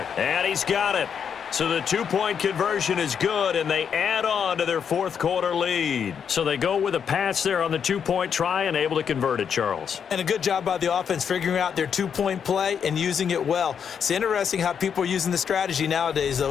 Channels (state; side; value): quieter; right; 7.4 dB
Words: And he's got it. So the 2-point conversion is good, and they add on to their fourth-quarter lead. So they go with a pass there on the 2-point try and able to convert it, Charles. And a good job by the offense figuring out their 2-point play and using it well. It's interesting how people are using the strategy nowadays,